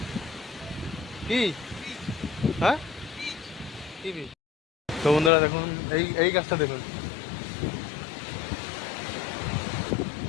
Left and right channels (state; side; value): drops out; right; at 5.3 s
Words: কি হ্যাঁ কি বীজ? তো বন্ধুরা দেখুন, এই গাছটা দেখুন,